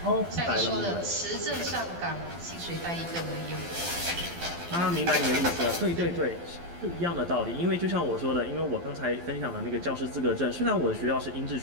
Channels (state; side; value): late; left; 12 ms